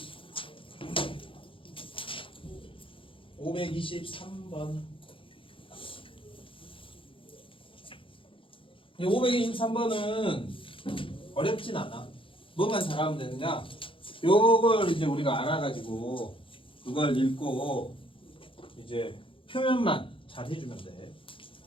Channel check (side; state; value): right; late; 0.25 ms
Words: 523번. 이 523번은 어렵진 않아. 뭐만 잘하면 되느냐? 요걸 이제 우리가 알아가지고 그걸 읽고 이제 표현만 잘 해주면 돼.